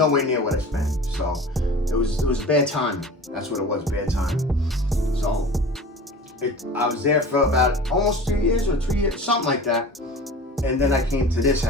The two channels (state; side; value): normal; both; correlation 0.38